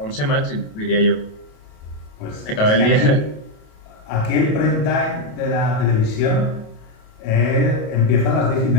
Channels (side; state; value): right; late; 28 ms